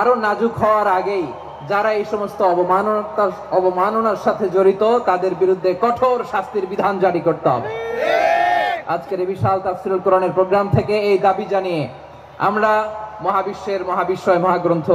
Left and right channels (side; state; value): both; identical; correlation 1.00